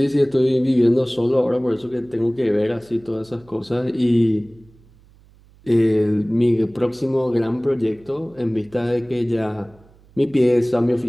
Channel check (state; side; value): noise; right; hum, 28 dB below the sound